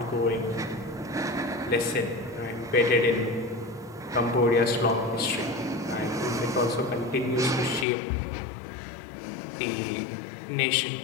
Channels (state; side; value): drops out; right; at 7.9 s